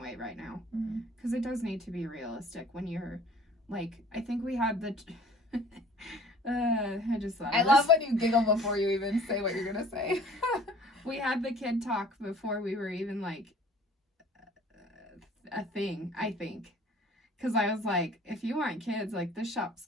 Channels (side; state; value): both; normal; correlation 0.50